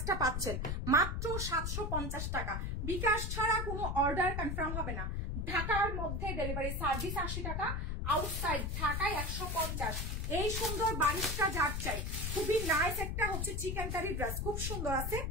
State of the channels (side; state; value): left; noise; rumble, 2 dB below the sound